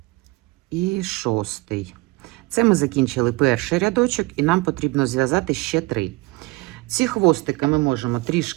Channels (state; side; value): quieter; left; 22.6 dB